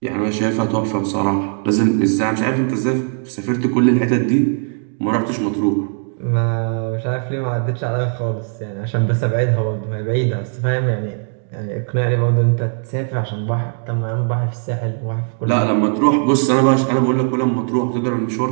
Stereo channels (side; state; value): left; silent; 56 dB below the other